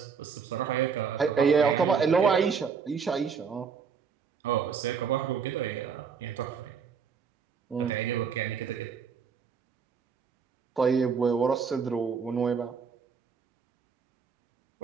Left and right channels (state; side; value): quieter; left; 6.1 dB